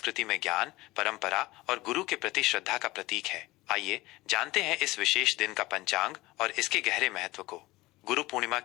में ज्ञान, परंपरा और गुरु के प्रति श्रद्धा का प्रतीक है। आइए जानते हैं इस विशेष दिन का पंचांग और इसके गहरे महत्व को। गुरु पूर्णिमा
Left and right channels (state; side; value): quieter; right; 19.8 dB